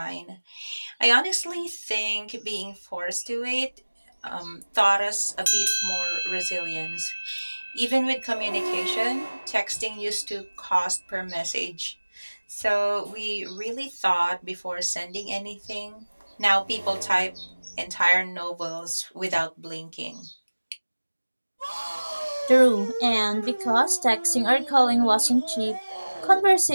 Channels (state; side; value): inverted; both; correlation -1.00